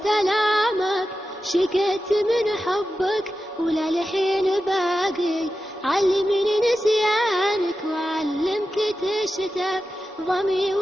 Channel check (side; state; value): both; normal; correlation 0.92